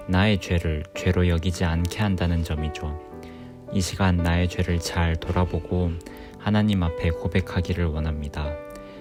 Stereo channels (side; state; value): both; identical; correlation 1.00